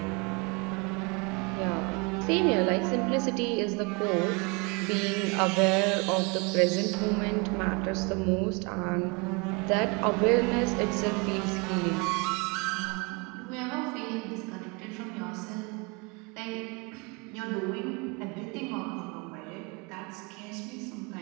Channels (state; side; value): quieter; left; 29.8 dB